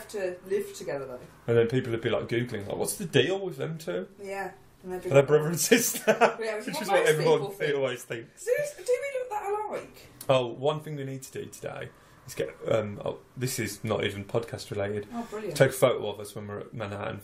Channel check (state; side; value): identical; both; correlation 1.00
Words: to live together though. And then people would be like googling, like, what's the deal with them two? Yeah. And they'd be Are they like, brother and sister? Yeah, which Which is is what what most everyone people think. always thinks. Do we look that alike? Oh, one thing we need to do today is get. This is not even podcast related. Oh, brilliant. Take a photo of us when we're at Manhattan